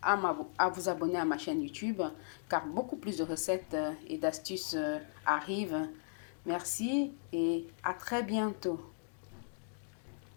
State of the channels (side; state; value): right; silent; digital silence